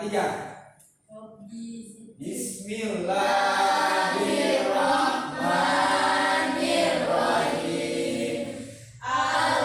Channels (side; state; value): both; identical; correlation 1.00